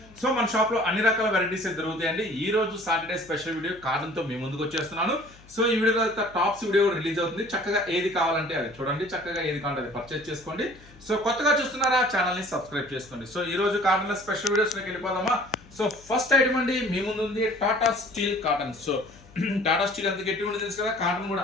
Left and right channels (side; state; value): left; noise; hum, 24 dB below the sound